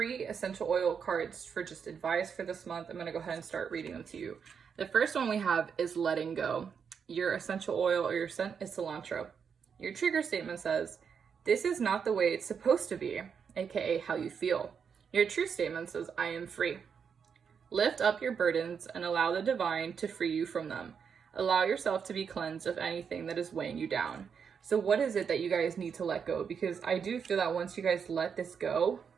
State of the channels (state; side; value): quieter; left; 6.7 dB